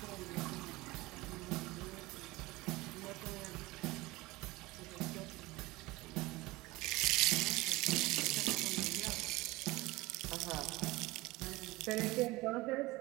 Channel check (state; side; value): quieter; left; 20.7 dB